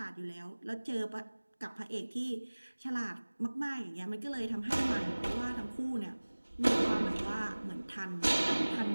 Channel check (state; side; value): inverted; both; correlation -1.00